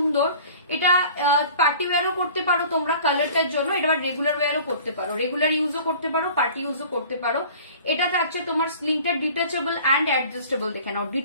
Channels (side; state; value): both; inverted; correlation -0.46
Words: এটা পার্টি ওয়্যারও করতে পারো তোমরা কালারটার জন্য, এটা রেগুলার ওয়্যারও করতে পারো, রেগুলার ইউজও করতে পারো, পার্টি ইউজও করতে পারো। এটা থাকছে তোমার স্লিংটা ডিটাচেবল অ্যান্ড অ্যাডজাস্টেবল, দেখে নাও,